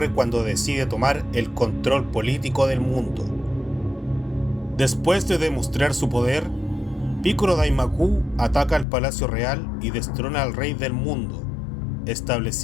cuando decide tomar el control político del mundo. Después de demostrar su poder, Picoro Daimaku ataca al Palacio Real y destrona al Rey del Mundo,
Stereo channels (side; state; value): right; drops out; at 8.8 s